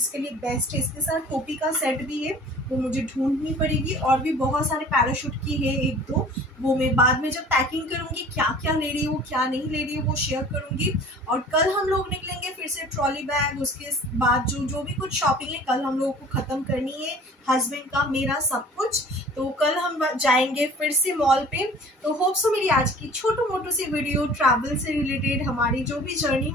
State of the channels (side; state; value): both; normal; correlation 0.47